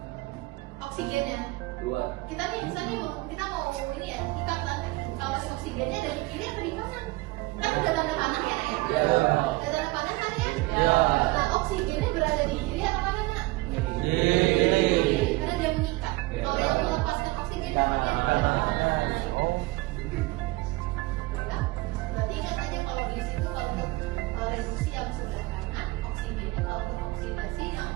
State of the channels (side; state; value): left; quieter; 21.7 dB